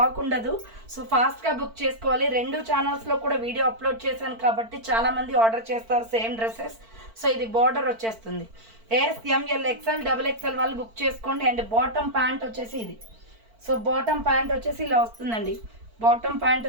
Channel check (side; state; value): left; late; 4.5 ms